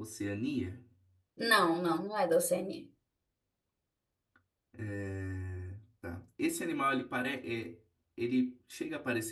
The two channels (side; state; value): both; identical; correlation 1.00